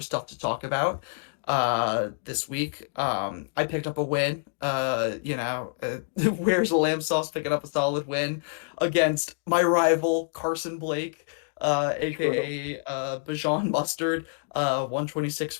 stuff to talk about this week. I picked up a win. Where's the lamb sauce picking up a solid win against my rival Carson Blake, True. aka Bajan Mustard.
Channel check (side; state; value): right; silent; digital silence